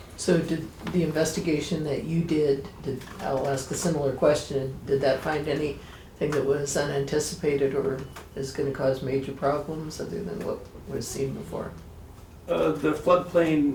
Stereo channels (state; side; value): identical; both; correlation 1.00